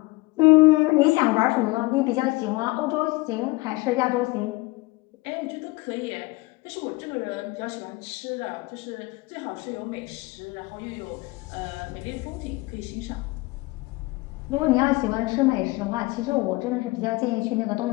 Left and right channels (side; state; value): right; quieter; 22.2 dB